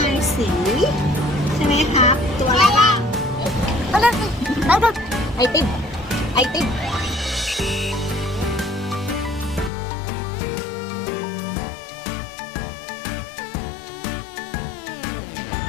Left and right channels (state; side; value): drops out; right; at 9.7 s